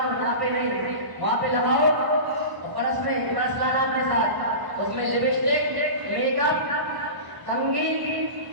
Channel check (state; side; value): late; left; 1.0 ms